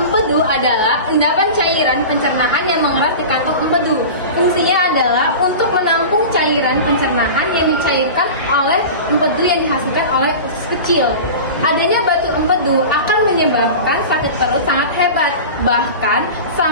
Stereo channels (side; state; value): both; inverted; correlation -0.32